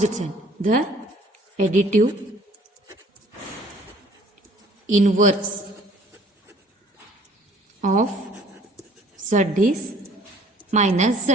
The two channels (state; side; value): normal; both; correlation 0.55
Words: sign. The additive inverse of z is minus